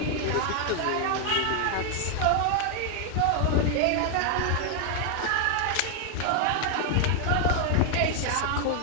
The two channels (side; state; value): both; different; correlation 0.00